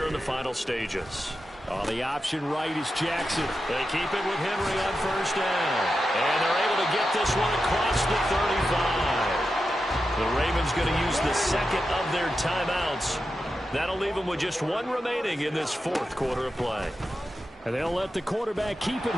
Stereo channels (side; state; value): both; normal; correlation 0.90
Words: in the final stages. On the option right is Jackson. They keep it with Henry on first down. And they're able to get this one across the 35. The Ravens going to use the second of their timeouts. That'll leave them with just 1 remaining in this 4th quarter of play. And they'll let the quarterback keep it